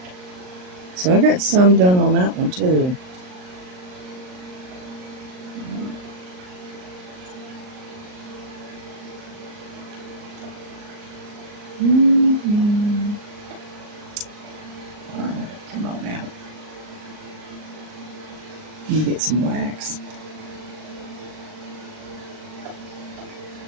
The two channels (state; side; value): late; left; 39 ms